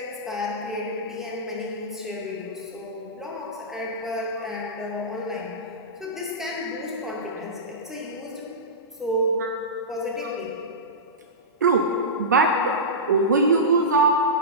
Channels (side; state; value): both; normal; correlation -0.16